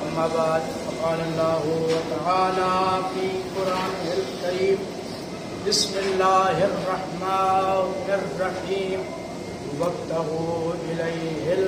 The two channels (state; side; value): identical; both; correlation 1.00